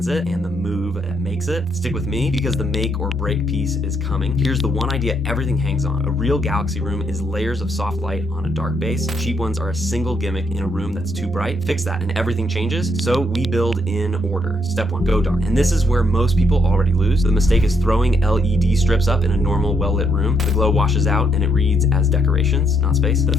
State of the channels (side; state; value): both; normal; correlation 0.74